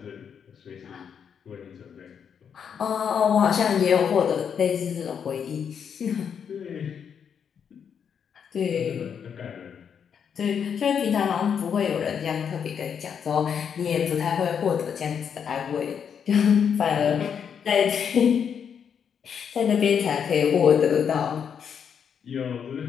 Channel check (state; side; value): quieter; right; 7.5 dB